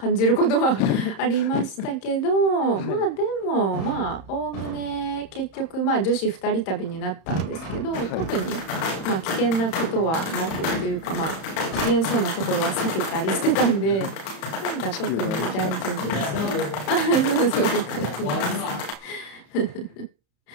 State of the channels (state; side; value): late; right; 34 ms